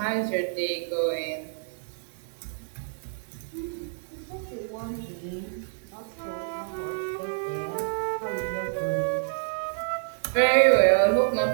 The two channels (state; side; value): silent; left; 59 dB below the other